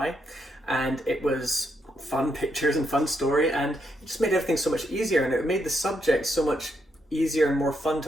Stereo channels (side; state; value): both; normal; correlation 0.79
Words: and it was fun pictures and fun story, and it just made everything so much easier, and it made the subject so much easier and more fun